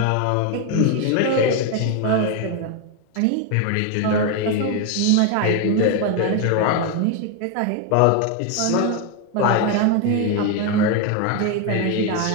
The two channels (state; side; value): different; both; correlation 0.01